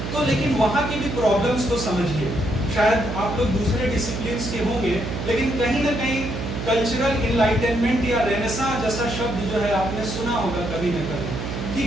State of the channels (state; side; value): noise; right; hum, 5 dB below the sound